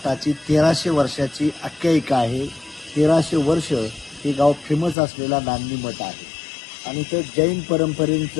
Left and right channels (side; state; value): right; drops out; at 5.0 s